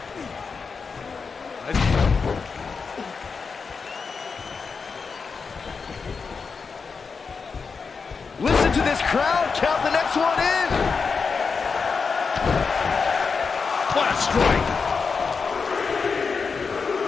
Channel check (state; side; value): quieter; right; 5.2 dB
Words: Listen to this crowd count the next one in. What a strike.